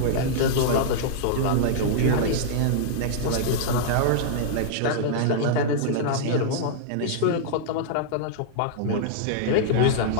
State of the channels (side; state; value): both; different; correlation -0.02